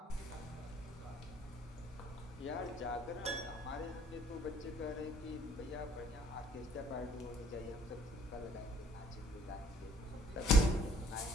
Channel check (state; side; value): normal; both; correlation 0.60